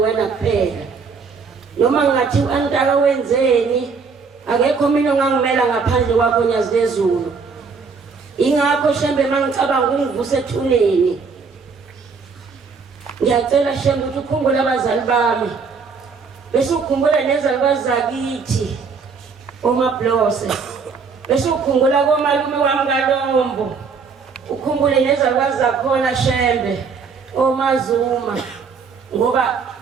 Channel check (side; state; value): left; quieter; 5.2 dB